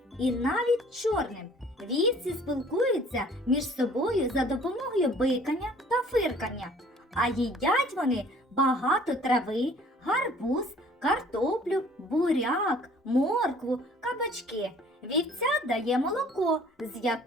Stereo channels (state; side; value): normal; both; correlation 0.54